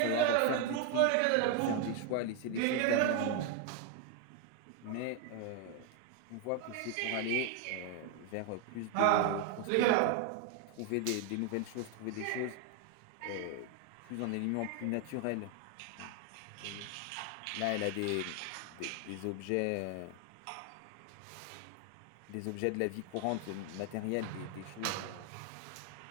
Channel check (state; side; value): different; both; correlation 0.01